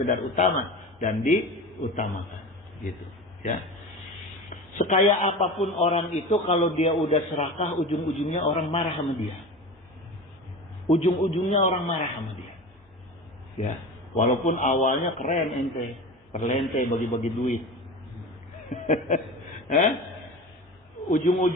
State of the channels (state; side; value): normal; both; correlation 0.31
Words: utama, dan diutamakan, gitu, ya. Sekaya apapun orang itu, kalau dia udah serakah, ujung-ujungnya orang marah sama dia. Ujung-ujungnya orang marah sama dia. Ya, walaupun awalnya keren ente, perlente bagi-bagi duit.